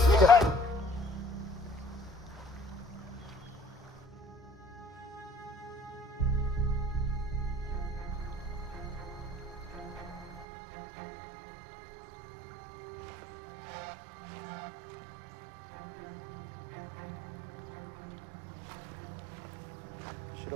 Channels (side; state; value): left; drops out; at 10.5 s